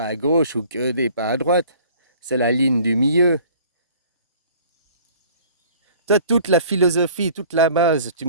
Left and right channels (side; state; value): both; inverted; correlation -0.50